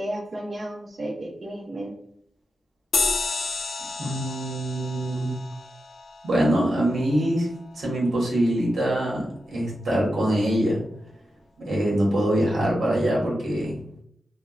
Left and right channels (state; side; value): normal; both; correlation 0.89